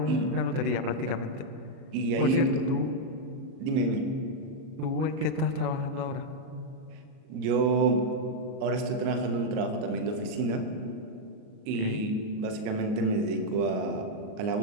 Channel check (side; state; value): left; late; 38 ms